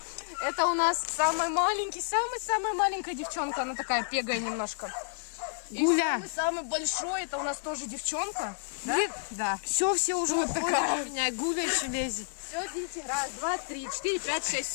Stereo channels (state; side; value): silent; right; digital silence